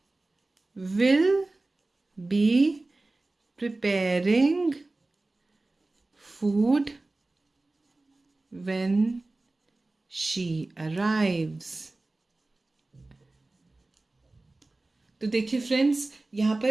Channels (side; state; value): left; quieter; 3.0 dB